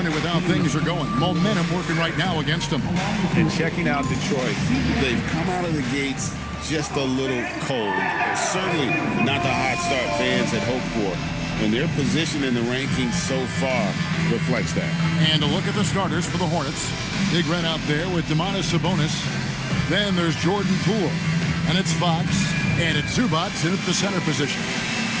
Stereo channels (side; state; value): both; identical; correlation 1.00